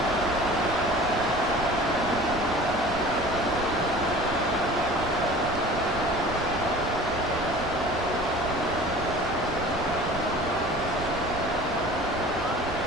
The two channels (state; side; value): noise; right; rumble, 13 dB below the sound